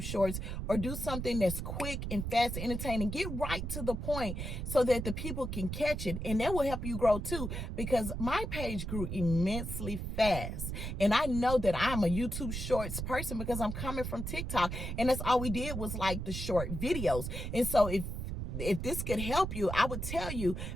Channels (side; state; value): right; noise; rumble, 4 dB below the sound